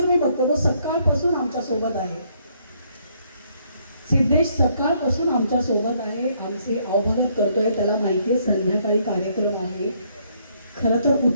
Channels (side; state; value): both; inverted; correlation -0.69